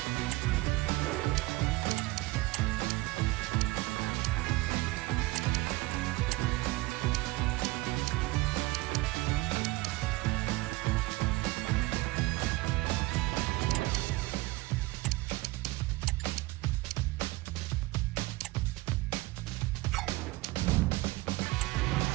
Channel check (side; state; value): left; quieter; 20.6 dB